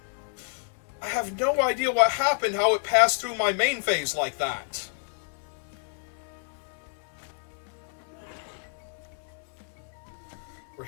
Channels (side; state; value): right; silent; 59 dB below the other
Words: I have no idea what happened, how it passed through my main phase like that. We're